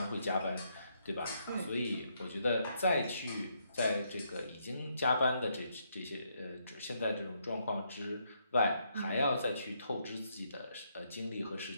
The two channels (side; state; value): both; inverted; correlation -0.75